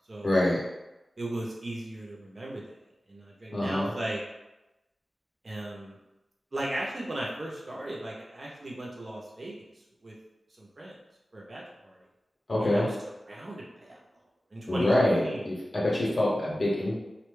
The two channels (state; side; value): normal; both; correlation 0.95